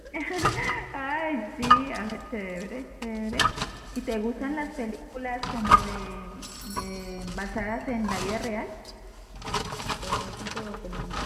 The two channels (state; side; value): identical; both; correlation 1.00